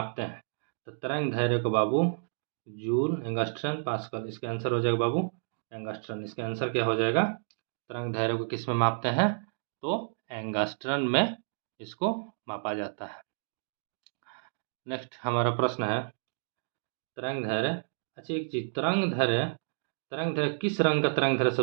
हैं? तो तरंग धैर्य को बाबू जूल, एंगस्ट्रम, पास्कल। इसका आंसर हो जाएगा बाबू एंगस्ट्रम। इसका आंसर क्या हो जाएगा? तरंग धैर्य को किस में मापते हैं? तो एंगस्ट्रम में इसको मापा जाता है। नेक्स्ट हमारा प्रश्न है तरंग धैर्य। अच्छा एक चीज, तरंग धैर्य किस रंग का तरंग धैर्य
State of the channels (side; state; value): left; silent; digital silence